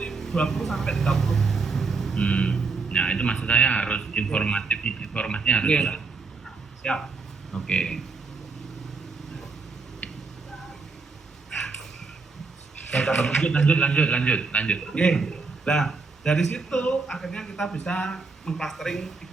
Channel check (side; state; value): left; quieter; 4.3 dB